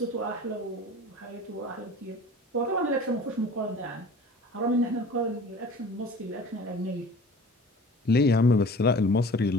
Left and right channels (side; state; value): both; normal; correlation 0.43